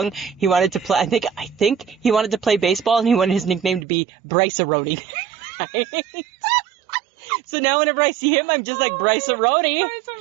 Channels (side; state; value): left; drops out; at 3.9 s